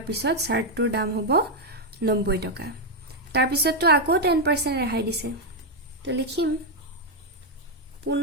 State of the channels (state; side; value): normal; both; correlation 0.01